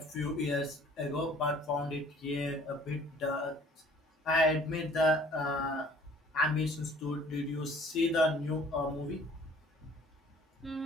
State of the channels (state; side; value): normal; both; correlation 0.54